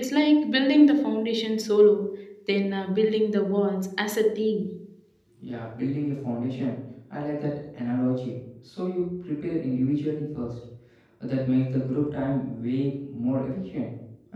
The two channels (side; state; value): both; identical; correlation 1.00